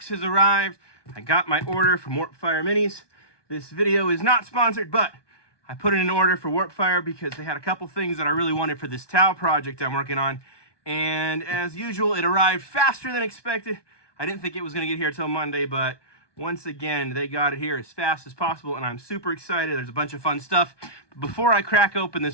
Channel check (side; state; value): right; late; 1.2 ms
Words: has arrived. I got my order from Warpfire Minis. This video is not sponsored, but I put in an order for Warpfire because they had a couple things that I really wanted for this towel project I'm working on. And as usual, it arrived faster than expected. I didn't think it was going to get here till Monday, but once again, they got it here as fast as possible, and I'm super excited. There's a bunch of fun stuff. But before I crack open